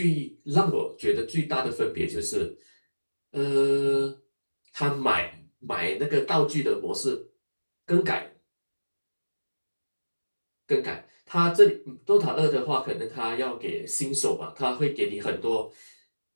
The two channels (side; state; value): both; inverted; correlation -1.00